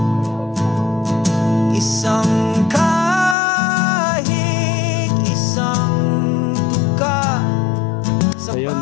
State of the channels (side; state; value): right; drops out; at 3.4 s